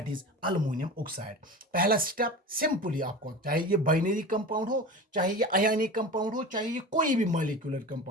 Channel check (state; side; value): normal; both; correlation 0.31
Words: इज अल्युमिनियम ऑक्साइड। पहला स्टेप सिंपली आपको, चाहे ये बाइनरी कंपाउंड हो, चाहे ये आयनिक कंपाउंड हो, चाहे ये कोई भी मॉलिक्यूलर